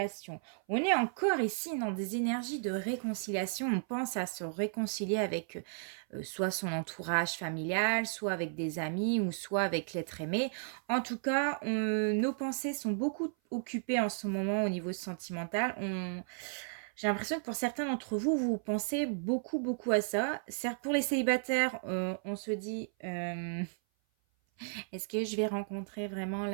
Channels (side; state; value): left; silent; 55 dB below the other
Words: On est encore ici dans des énergies de réconciliation. On pense à se réconcilier avec, soit son entourage familial, soit avec des amis ou soit avec l'être aimé. En tout cas, nos pensées sont beaucoup occupées en ce moment au niveau sentimental. J'ai l'impression que pour certains d'entre vous, vous pensez beaucoup, beaucoup à ça. Certes, pour les célibataires, on se dit, est-ce que je vais rencontrer vraiment